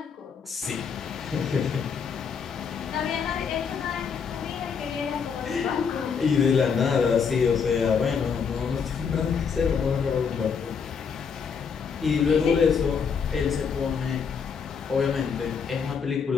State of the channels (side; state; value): right; quieter; 6.2 dB